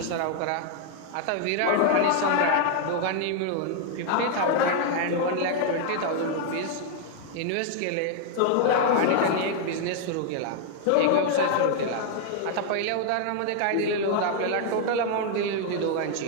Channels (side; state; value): both; different; correlation 0.00